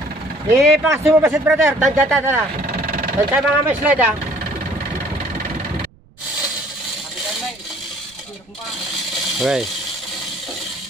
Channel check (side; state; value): right; noise; rumble, 29 dB below the sound